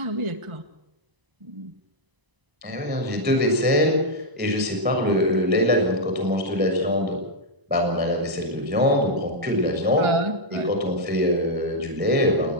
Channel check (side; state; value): left; late; 1.0 ms